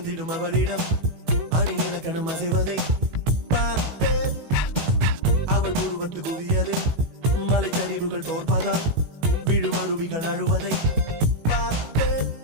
அவளிடம் அணி இலக்கணம் அசைவதை பார்த்தேன் அவள் உருவத்து குவியலில் மலைச்சரிவுகள் தோற்பதால் விழும் அருவிகள் அழுவதை பார்த்தேன்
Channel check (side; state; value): left; late; 18 ms